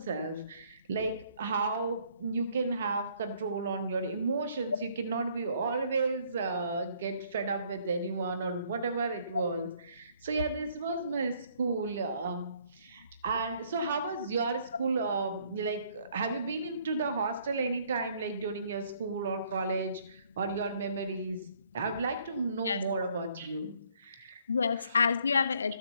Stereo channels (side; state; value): both; inverted; correlation -0.64